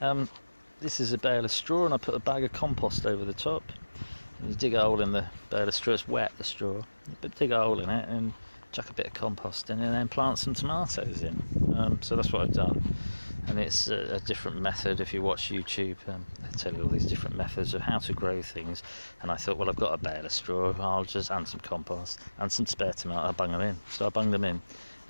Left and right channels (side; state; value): both; inverted; correlation -1.00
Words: This is a bale of straw, and I put a bag of compost over the top. And you dig a hole in the bale of straw. It's wet, the straw, but dig a hole in it and chuck a bit of compost in, and then plant some tomatoes in. So that's what I've done, and it's a different method. If you watch YouTube, they tell you all these different methods of how to grow things. And I thought, well, I've got a bale of straw, I'll just add some compost and some spare tomato. I'll bung them in. So I bunged them in,